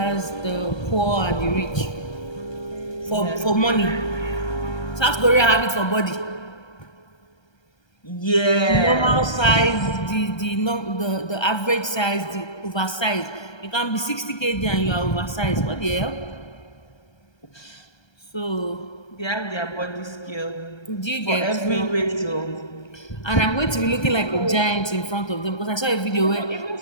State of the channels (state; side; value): late; right; 1.3 ms